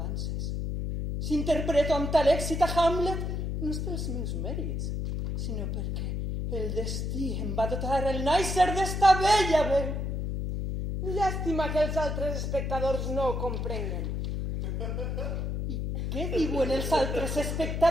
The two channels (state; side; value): noise; left; hum, 2 dB below the sound